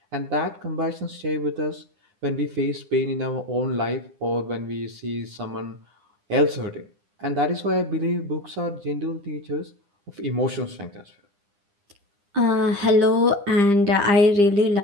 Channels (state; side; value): late; left; 9.9 ms